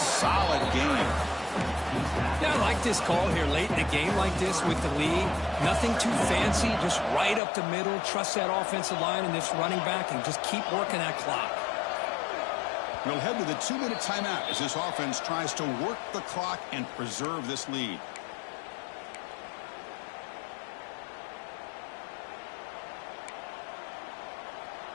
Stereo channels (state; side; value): drops out; right; at 7.4 s